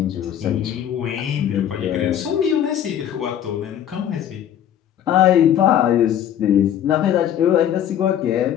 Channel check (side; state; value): right; quieter; 10.2 dB